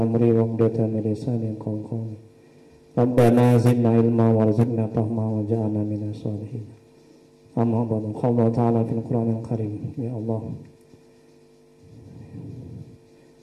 wa hludatan min lisani yafqahu qawli. Rabbana zidna ilma warzuqna fahma waj'alna minas sholihin. Amma ba'du. Qala ta'ala fil Qur'anil Karim. Ya Allah,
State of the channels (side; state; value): both; identical; correlation 1.00